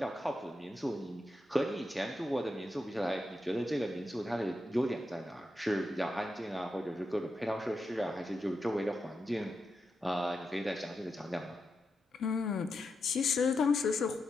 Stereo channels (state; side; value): normal; both; correlation 0.87